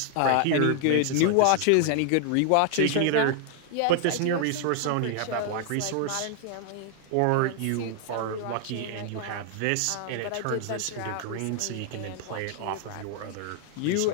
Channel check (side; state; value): both; different; correlation 0.00